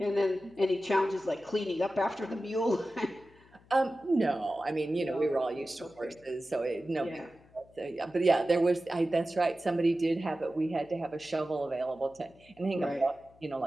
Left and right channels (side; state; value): left; noise; hum, 28 dB below the sound